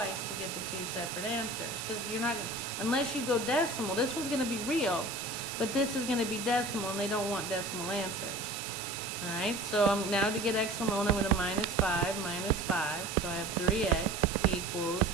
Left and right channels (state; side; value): noise; right; hiss, 7 dB below the sound